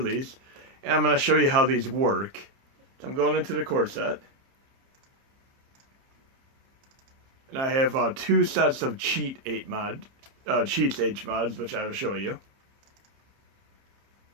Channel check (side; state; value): left; late; 30 ms